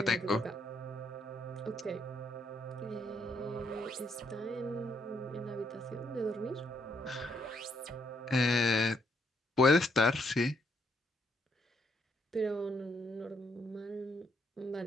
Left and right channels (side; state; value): both; normal; correlation 0.74